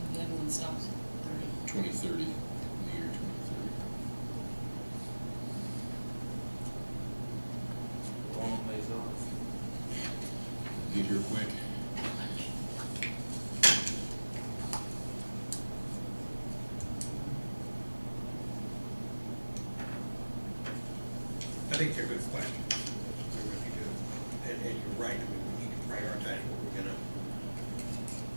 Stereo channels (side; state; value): both; inverted; correlation -1.00